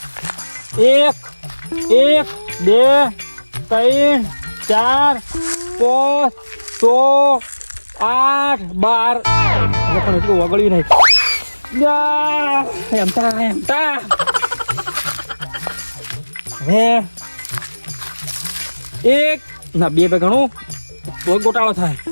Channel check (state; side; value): inverted; both; correlation -1.00